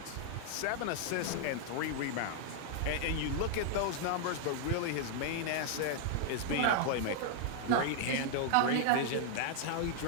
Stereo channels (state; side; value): different; both; correlation 0.00